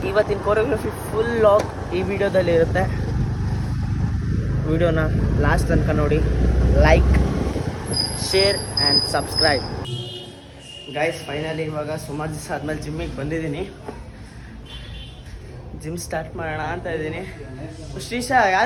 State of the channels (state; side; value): identical; both; correlation 1.00